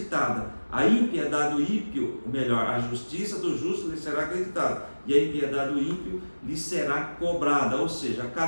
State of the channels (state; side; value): inverted; both; correlation -1.00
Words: A impiedade do ímpio, a justiça do justo lhe será acreditada. E a impiedade do ímpio lhe será cobrada. Ou seja,